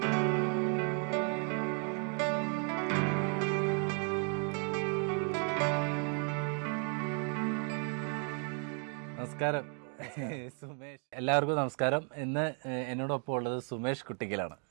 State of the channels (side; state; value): left; quieter; 39.2 dB